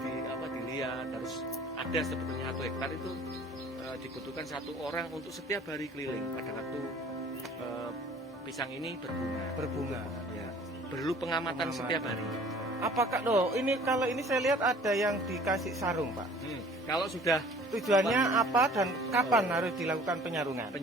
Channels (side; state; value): both; normal; correlation 0.50